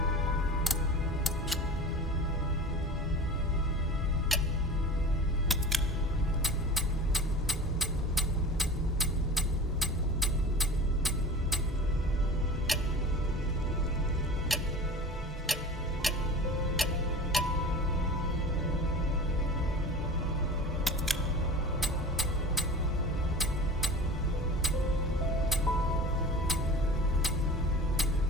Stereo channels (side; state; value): both; normal; correlation 0.36